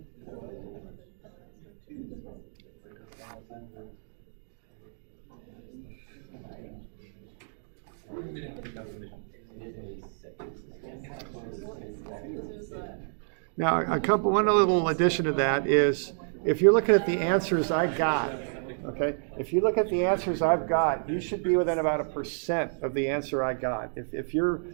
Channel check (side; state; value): left; silent; digital silence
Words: Now, one little addition to that is, if you're looking at the answers I got, okay, if you look at the answers I've got, you should be within about 1% of the answer I got. If you're